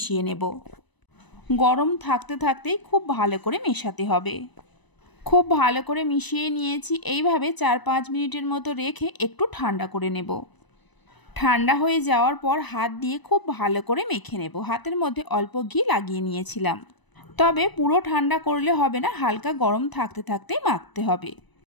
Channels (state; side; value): late; right; 1.0 ms